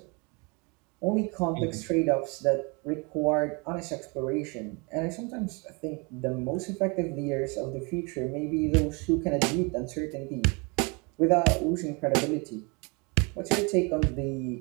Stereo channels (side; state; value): left; quieter; 30.4 dB